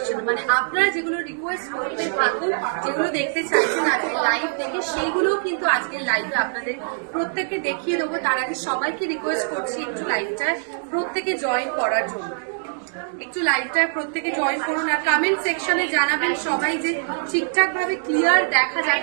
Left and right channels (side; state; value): left; silent; digital silence